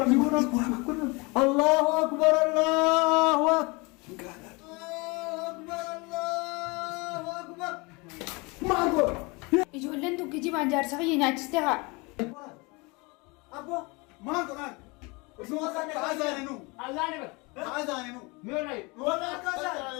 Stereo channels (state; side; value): quieter; right; 27.0 dB